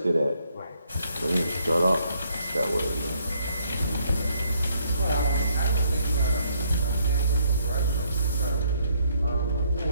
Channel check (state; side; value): inverted; both; correlation -0.69